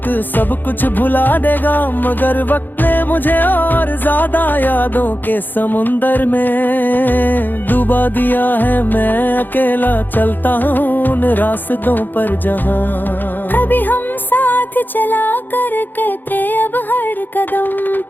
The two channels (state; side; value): late; right; 0.089 ms